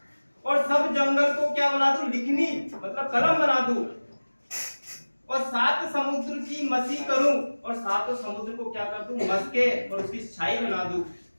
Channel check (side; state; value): both; inverted; correlation -1.00